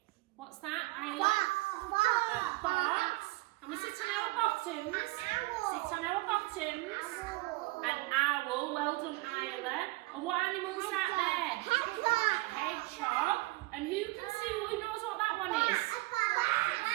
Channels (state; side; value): quieter; left; 22.6 dB